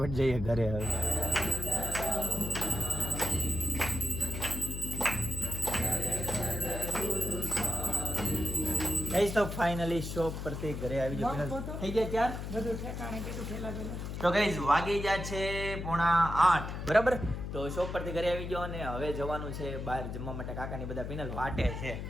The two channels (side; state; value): left; noise; hum, 5 dB below the sound